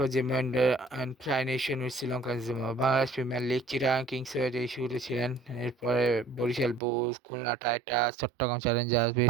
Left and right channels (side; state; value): left; drops out; at 6.8 s